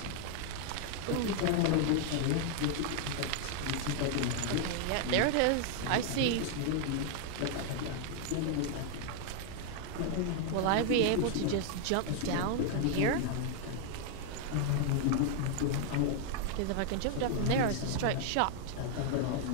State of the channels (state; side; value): different; both; correlation 0.00